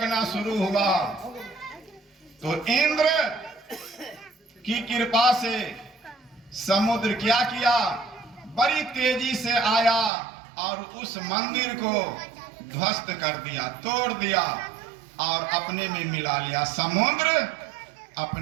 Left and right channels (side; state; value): left; drops out; at 10.1 s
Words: शुरू हुआ, तो इंद्र की कृपा से समुद्र क्या किया, बड़ी तेजी से आया और उस मंदिर को ध्वस्त कर दिया, तोड़ दिया और अपने में मिला लिया। समुद्र